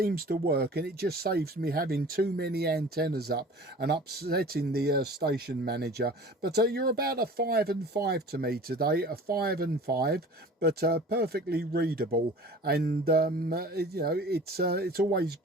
to work, and it just saves me having too many antennas up and upsetting the station manager. But you're about a 5 and 5 to me today, a 5 and 5, but perfectly readable, and you know, it's always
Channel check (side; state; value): both; normal; correlation 0.42